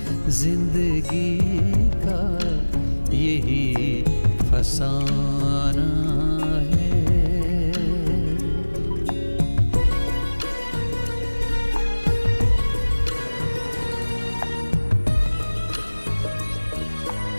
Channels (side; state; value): both; inverted; correlation -1.00